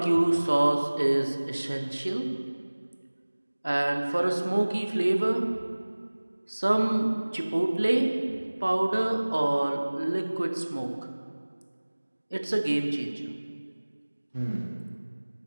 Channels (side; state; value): both; inverted; correlation -1.00